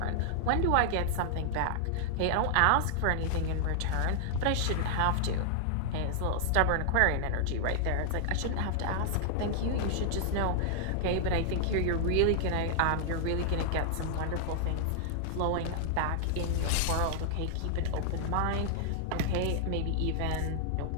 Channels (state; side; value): different; both; correlation -0.01